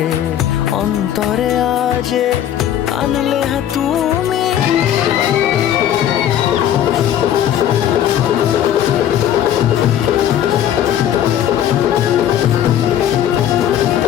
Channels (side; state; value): right; quieter; 10.7 dB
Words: অন্তরে আজে, আনলে তুমি